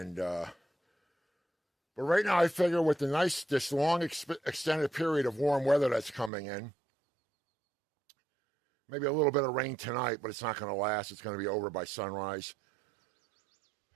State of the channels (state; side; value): drops out; left; at 6.3 s